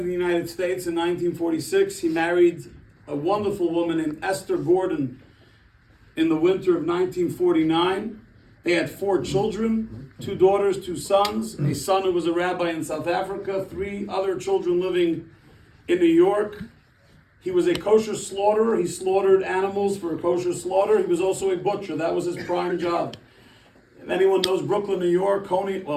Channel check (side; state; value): both; identical; correlation 1.00